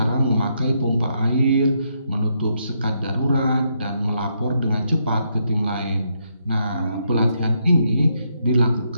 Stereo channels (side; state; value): both; inverted; correlation -0.77